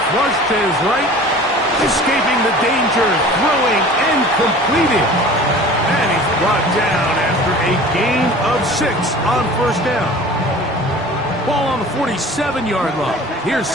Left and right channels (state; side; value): normal; both; correlation 0.42